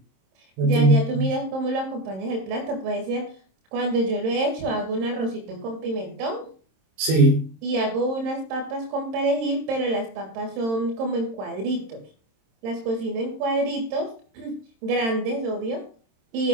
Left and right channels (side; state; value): left; late; 26 ms